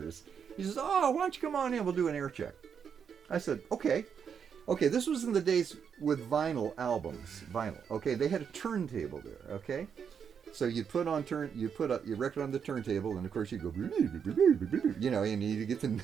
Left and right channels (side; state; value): left; quieter; 7.2 dB